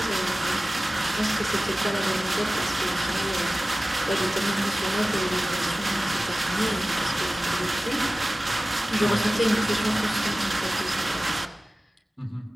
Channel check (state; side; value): normal; both; correlation 0.97